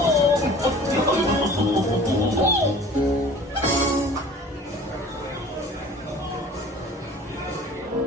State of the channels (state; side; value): normal; both; correlation 0.45